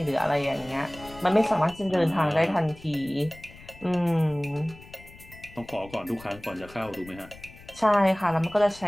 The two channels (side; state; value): left; noise; rumble, 20 dB below the sound